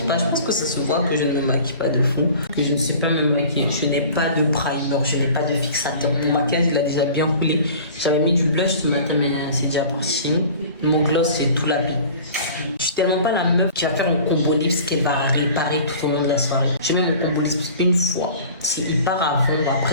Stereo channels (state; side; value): inverted; both; correlation -0.43